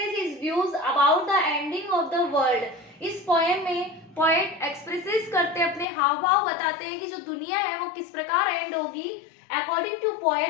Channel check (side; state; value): right; drops out; at 5.9 s